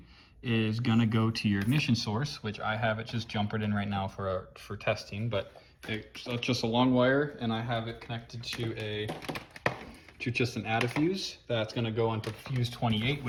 is going to go to your ignition source, which I have it just jumpered in right now for testing, but it's just a long wire, and I have it connected to just an add-a-fuse that's going to go onto fuse 28,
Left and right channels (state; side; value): identical; both; correlation 1.00